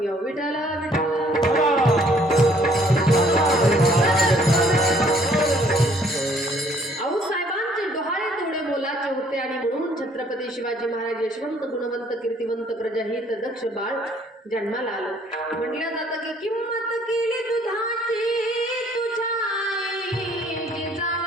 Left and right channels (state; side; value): normal; both; correlation 0.61